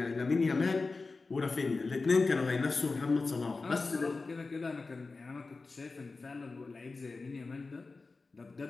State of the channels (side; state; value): right; quieter; 3.9 dB